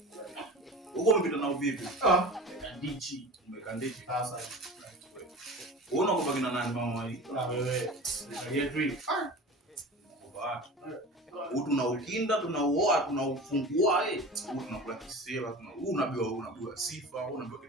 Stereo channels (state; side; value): normal; both; correlation 0.34